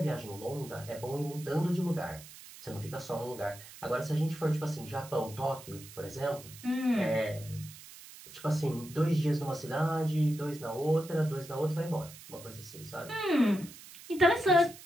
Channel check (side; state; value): right; noise; hiss, 17 dB below the sound